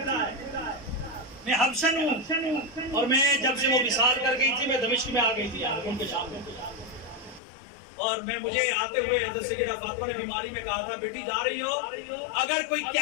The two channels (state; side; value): drops out; right; at 7.4 s